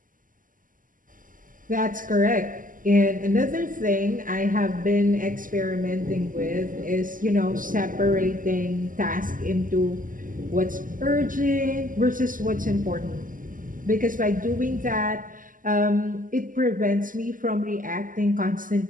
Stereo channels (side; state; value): left; late; 0.39 ms